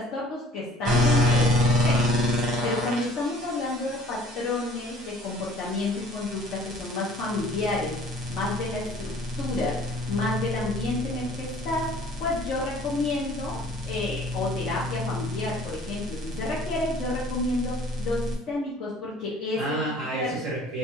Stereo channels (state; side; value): normal; both; correlation 0.52